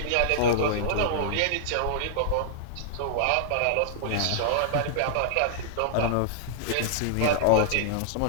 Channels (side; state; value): both; different; correlation -0.01